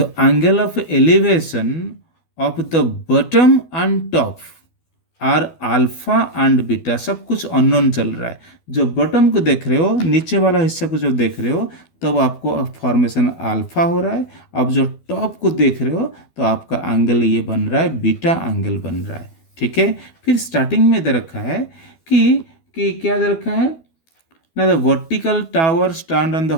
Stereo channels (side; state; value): right; late; 12 ms